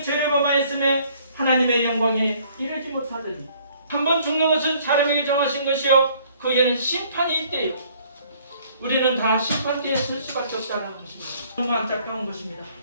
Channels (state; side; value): inverted; both; correlation -0.59